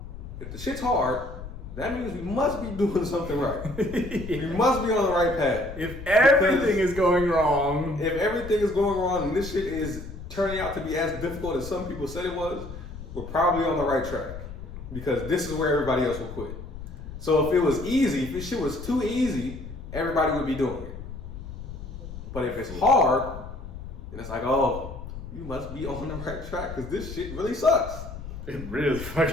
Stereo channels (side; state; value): left; noise; rumble, 11 dB below the sound